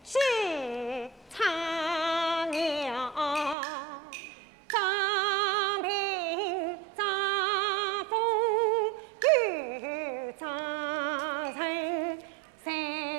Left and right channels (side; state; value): left; drops out; at 3.6 s